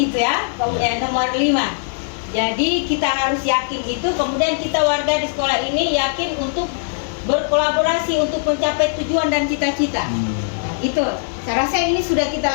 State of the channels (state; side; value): silent; right; digital silence